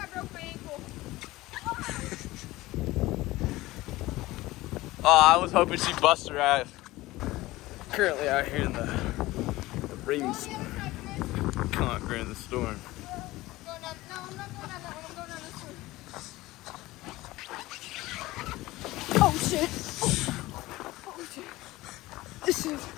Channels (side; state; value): right; quieter; 18.5 dB